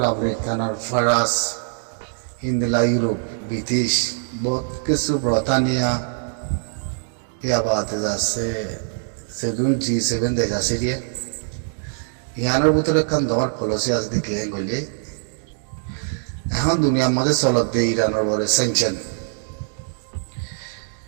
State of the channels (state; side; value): silent; left; digital silence